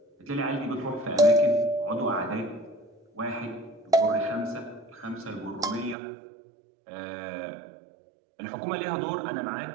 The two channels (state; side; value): drops out; left; at 6.0 s